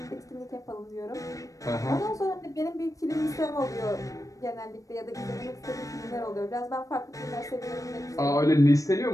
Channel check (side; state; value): right; late; 0.16 ms